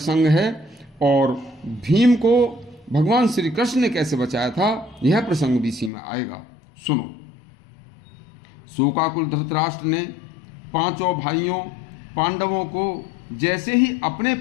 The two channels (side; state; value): right; drops out; at 5.9 s